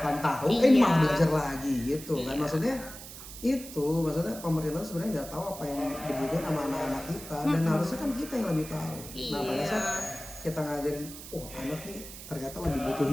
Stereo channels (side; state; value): right; noise; hiss, 13 dB below the sound